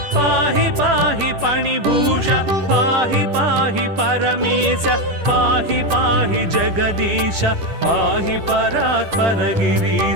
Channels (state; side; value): late; left; 10 ms